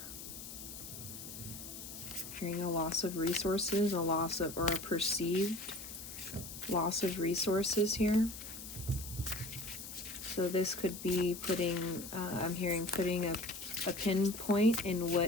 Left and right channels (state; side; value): noise; left; hiss, 11 dB below the sound